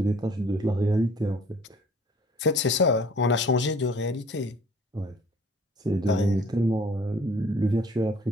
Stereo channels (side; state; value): both; normal; correlation 0.54